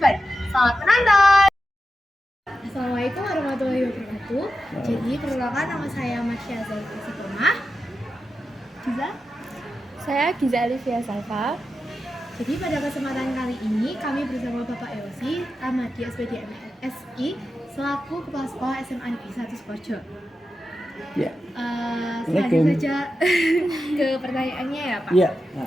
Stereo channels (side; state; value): both; normal; correlation 0.90